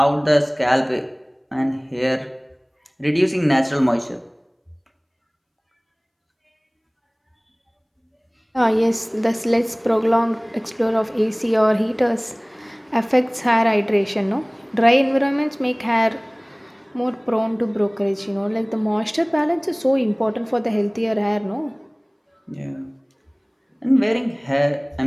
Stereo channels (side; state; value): both; identical; correlation 1.00